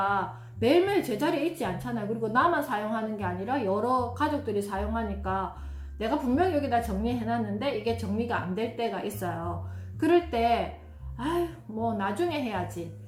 매일매일 제자리에 있지 않잖아요. 그리고 나만 사용하는 게 아니라 여러 가족들이 사용하니까 내가 분명히 여기다 정리해놨는데 이게 정리가 안 될 때가 있어요. 그럴 때 아유 나중에 해야지,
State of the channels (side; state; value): both; identical; correlation 1.00